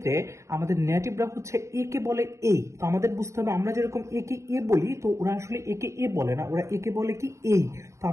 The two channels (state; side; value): late; left; 0.14 ms